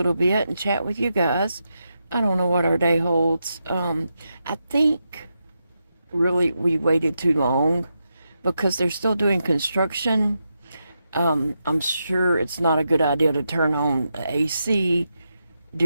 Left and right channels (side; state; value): both; inverted; correlation -0.86